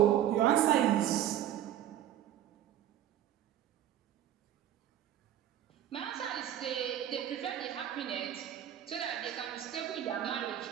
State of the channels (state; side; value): quieter; left; 11.4 dB